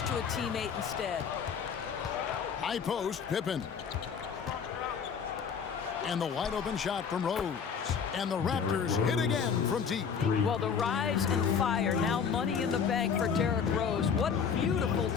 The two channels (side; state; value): right; quieter; 6.7 dB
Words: to a teammate instead. High post, Pippen. And the wide open shot from Rose. And the Raptors hit again from deep. Well, the rise and fire, now money in the bank for Derrick Rose. What beautiful